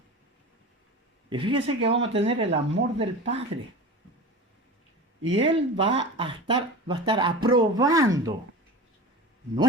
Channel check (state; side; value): normal; both; correlation 0.32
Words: Y fíjese que vamos a tener el amor del Padre. Y Él va a estar aprobando